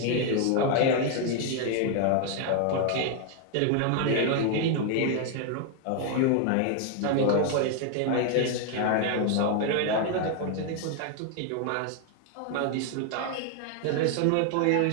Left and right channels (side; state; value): both; different; correlation 0.00